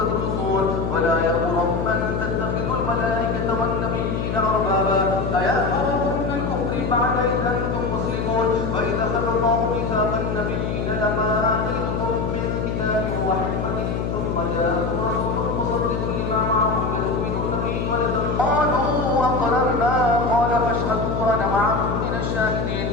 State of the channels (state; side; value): noise; left; hum, 1 dB below the sound